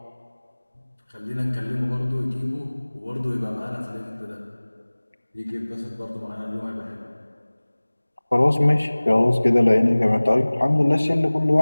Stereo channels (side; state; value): both; inverted; correlation -1.00